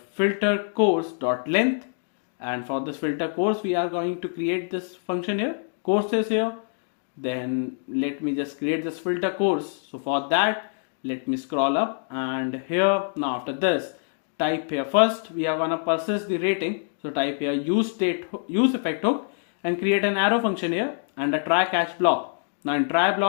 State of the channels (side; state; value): right; silent; digital silence